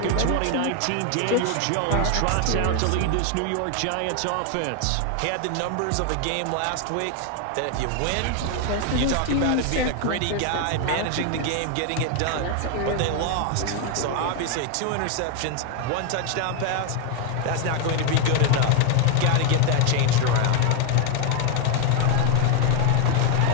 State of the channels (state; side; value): different; both; correlation 0.01